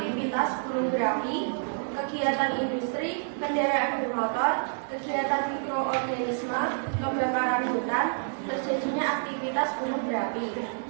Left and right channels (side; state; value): left; silent; digital silence